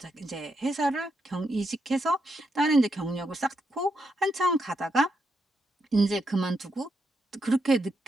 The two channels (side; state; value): both; normal; correlation 0.81